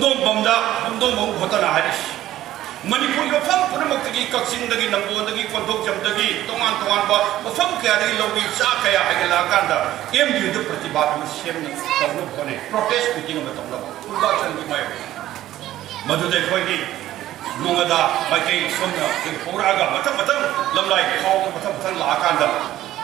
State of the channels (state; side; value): quieter; left; 13.9 dB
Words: बमदा पुंगदोंग बम होतना हारिस मणिपुर मफम पुनमुक्तगी कक्सिंगदगी नंगोदगी कोंदोकजमदगी तोंगान तोंगान बा मफम कयादगी लौगी चा कया हाइगला कांदा एमयू द प्रतिबाद में सेम तौनु कोने प्रोटेस्ट मीटिंग में तौनु पूर्वाचल की माय मधुदे खोगी नोंगदा माइके सोमना पोरागा मथम मथम लमलाई खाव मथम मथम ला कांदा